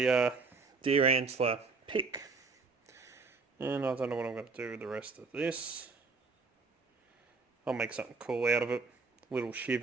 deer antler pick. And I don't know what I'm going to do with the rest of this. I'll make something cool out of it. Little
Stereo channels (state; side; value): quieter; left; 4.3 dB